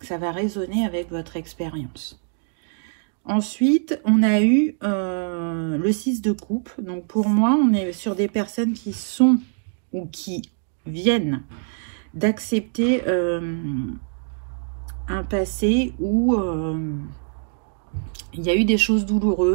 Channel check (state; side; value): silent; left; digital silence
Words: ça va résonner avec votre expérience. Ensuite, on a eu le 6 de coupe. Donc pour moi, on est sur des personnes qui sont ou qui viennent d'accepter un passé où il y a eu des choses